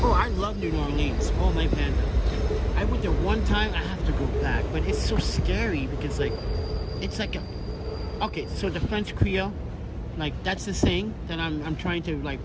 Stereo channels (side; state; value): both; identical; correlation 1.00